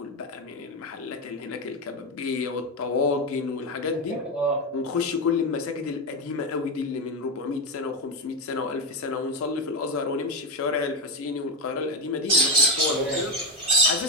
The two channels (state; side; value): normal; both; correlation 0.12